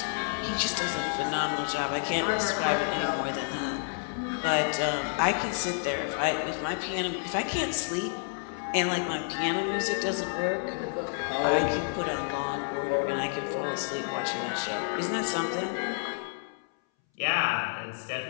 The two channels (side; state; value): right; silent; 58 dB below the other